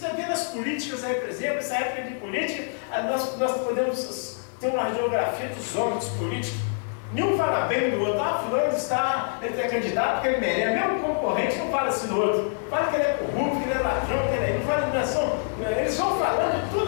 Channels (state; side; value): silent; right; digital silence